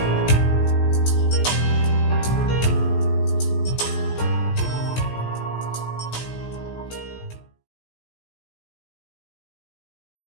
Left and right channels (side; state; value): right; late; 17 ms